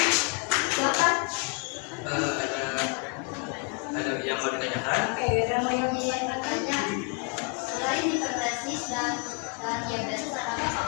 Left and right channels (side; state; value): right; quieter; 33.3 dB